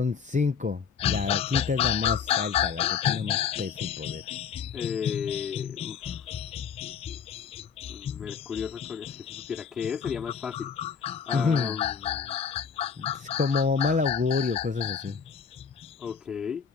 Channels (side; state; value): right; quieter; 6.6 dB